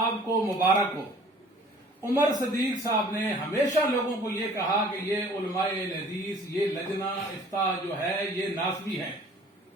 کو مبارک ہو۔ عمر صدیق صاحب نے ہمیشہ لوگوں کو یہ کہا کہ یہ علماء اہل حدیث، یہ لجنہ افتاء جو ہے یہ ناسبی ہے۔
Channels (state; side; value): normal; both; correlation 0.51